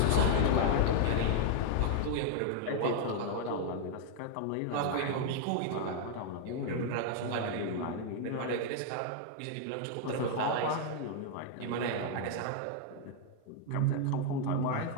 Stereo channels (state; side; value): different; both; correlation 0.00